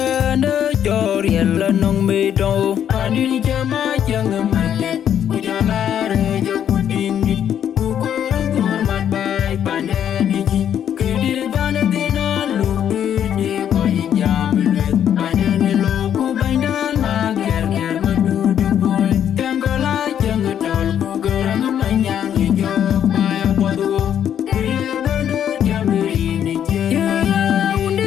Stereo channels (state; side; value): quieter; right; 9.6 dB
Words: jor yella nong me do Pani jama jang male Ujala re jo kudingi Ukore kor mat bai pandeni ji Kidi bana dina lupi de koi jam le Pandeni loku baindan ma ger ger madu de boy Tangola jang tol ku gerang manyang jo Paya padu Kidi bana jam ri je Ya